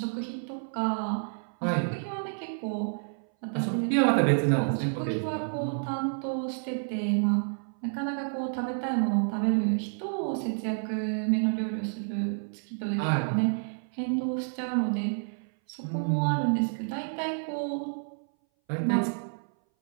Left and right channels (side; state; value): left; silent; 58 dB below the other